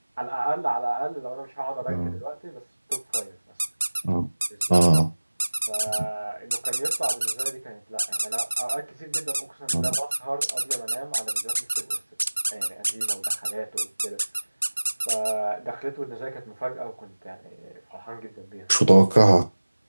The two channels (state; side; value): inverted; both; correlation -1.00